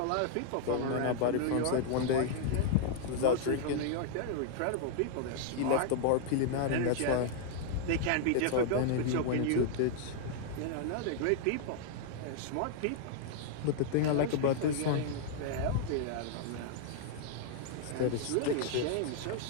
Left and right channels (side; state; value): both; different; correlation -0.01